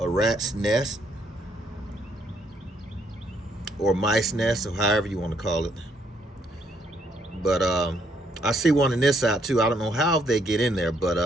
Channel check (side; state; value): both; normal; correlation 0.71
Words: nest or mice nest, or however you want to call it. But I see one in this side too. I don't know how they get in there,